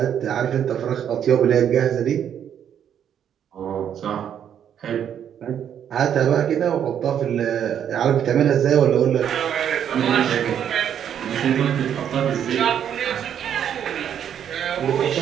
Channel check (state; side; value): quieter; left; 9.2 dB